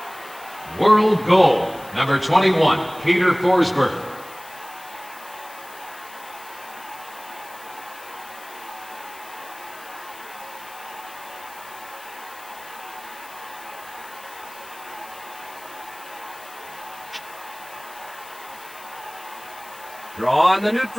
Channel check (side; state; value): left; noise; hiss, 19 dB below the sound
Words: World goal, number 21, Peter Forsberg. Draw in the